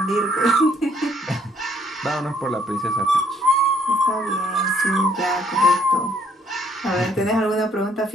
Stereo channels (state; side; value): normal; both; correlation 0.65